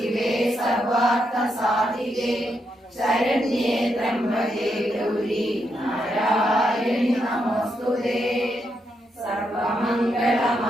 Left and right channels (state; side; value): normal; both; correlation 0.81